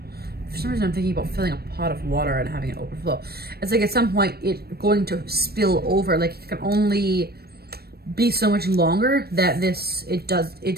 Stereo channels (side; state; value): left; late; 0.46 ms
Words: for some reason I'm thinking about filling a pot of water and having it overflow. It's like at some point it's going to spill over. Like, it can only be so much longer that it